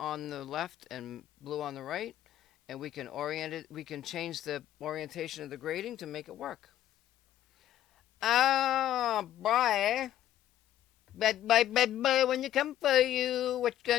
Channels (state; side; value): quieter; right; 12.2 dB